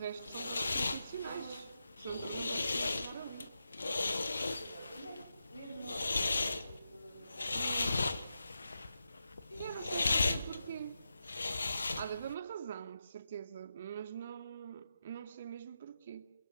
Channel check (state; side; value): inverted; both; correlation -0.87